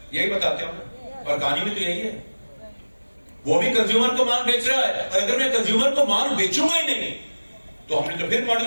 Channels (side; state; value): both; inverted; correlation -1.00